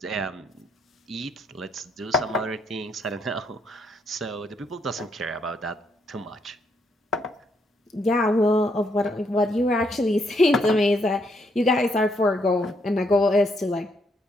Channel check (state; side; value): normal; both; correlation 0.74